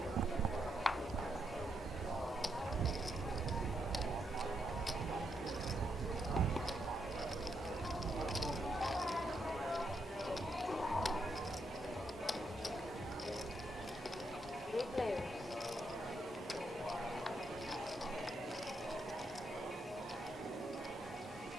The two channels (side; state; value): both; normal; correlation 0.80